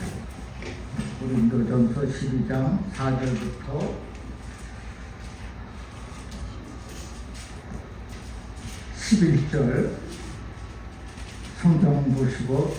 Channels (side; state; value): both; identical; correlation 1.00